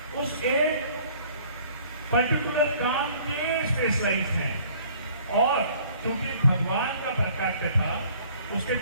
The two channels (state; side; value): inverted; both; correlation -0.55